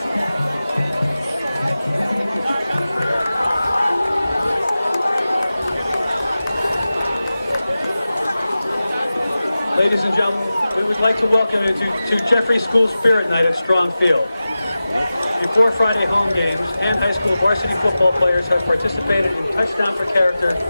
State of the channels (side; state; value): both; inverted; correlation -0.95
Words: Ladies and gentlemen, we would like to welcome you to Jeffrey School Spirit Night at Strong Field. Before Friday home games, Hand High School varsity football players have participated in Touchdown for Character